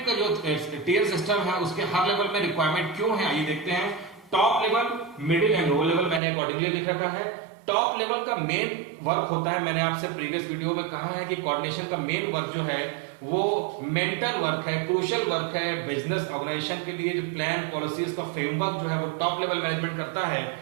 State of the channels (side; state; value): left; drops out; at 6.2 s